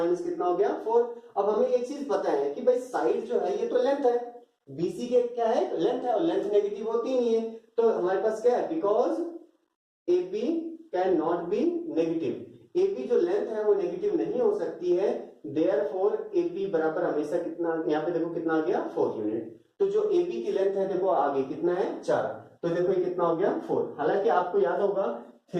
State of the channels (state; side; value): identical; both; correlation 1.00